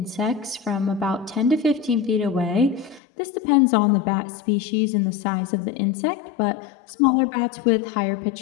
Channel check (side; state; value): right; drops out; at 3.0 s